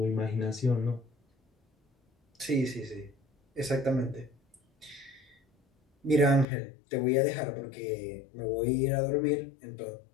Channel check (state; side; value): drops out; right; at 6.5 s